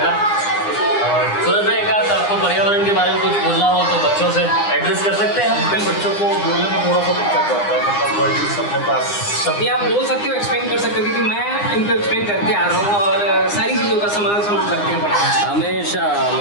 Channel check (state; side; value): late; right; 9.8 ms